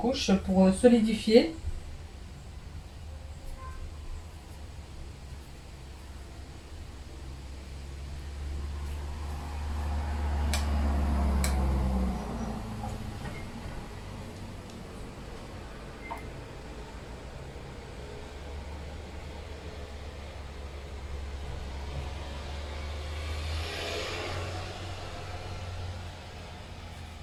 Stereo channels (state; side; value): identical; both; correlation 1.00